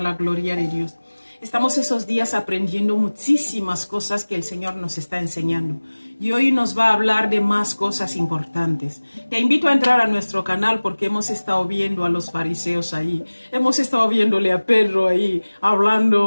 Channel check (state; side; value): inverted; both; correlation -1.00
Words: la gloria de Dios. Estamos esos días aprendiendo muchísimas cosas que el Señor nos está enseñando. Y hoy nos va a hablar de más cosas importantes. Te invito a entrar a nuestro canal porque hemos estado viendo a los fariseos ahí. Hemos estado viéndole a Pedro ahí,